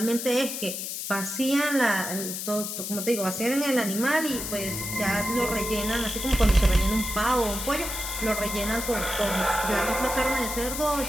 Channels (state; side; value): noise; left; hiss, 5 dB below the sound